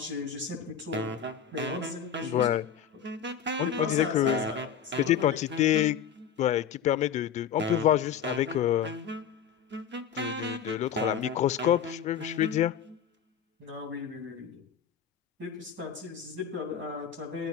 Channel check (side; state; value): right; quieter; 8.1 dB